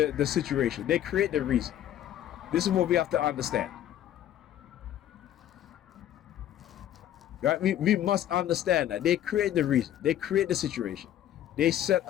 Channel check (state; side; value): quieter; right; 11.7 dB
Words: situation. They create the reason. This is what we have to understand. Right? We must understand that they create the reason. They create the situation. They set